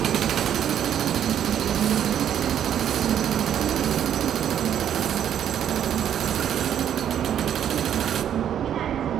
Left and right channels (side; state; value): left; quieter; 9.7 dB